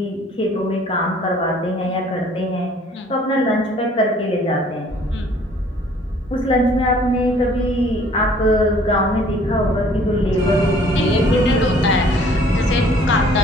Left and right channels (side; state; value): both; normal; correlation 0.56